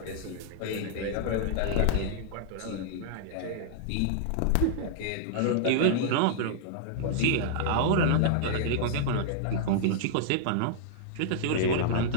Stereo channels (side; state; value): both; different; correlation -0.01